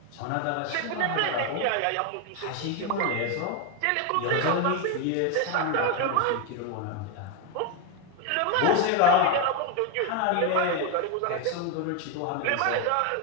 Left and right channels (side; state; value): both; different; correlation 0.02